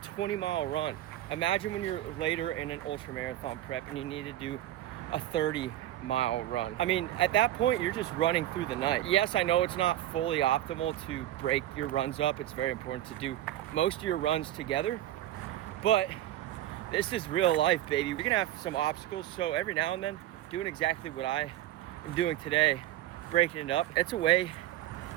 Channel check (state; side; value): quieter; left; 13.5 dB